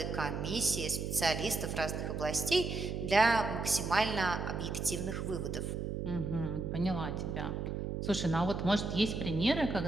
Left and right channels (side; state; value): right; noise; hum, 3 dB below the sound